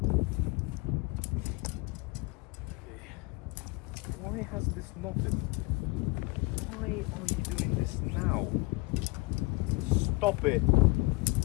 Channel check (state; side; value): quieter; right; 24.0 dB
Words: Why has this not been? Why are you doing this now? Stop it.